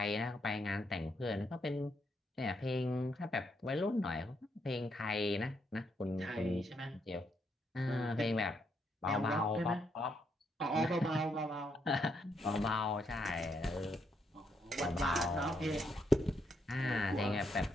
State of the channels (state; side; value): normal; both; correlation 0.77